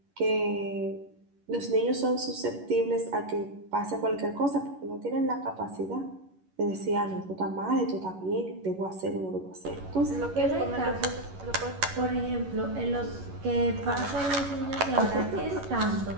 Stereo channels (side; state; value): left; late; 11 ms